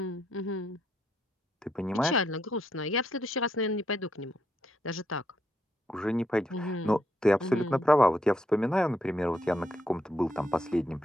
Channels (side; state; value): both; normal; correlation 0.77